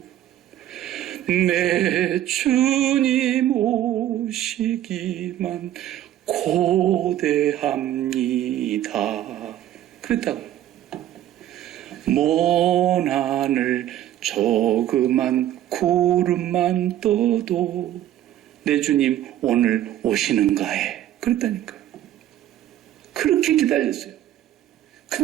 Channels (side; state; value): left; quieter; 12.5 dB